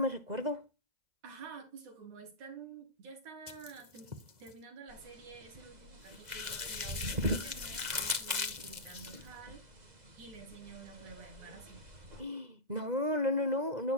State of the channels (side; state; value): left; late; 2.0 ms